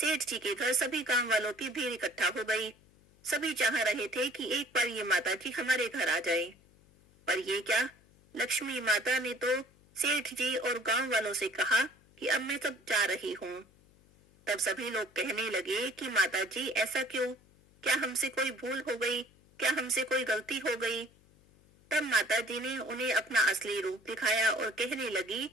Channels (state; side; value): noise; left; hum, 29 dB below the sound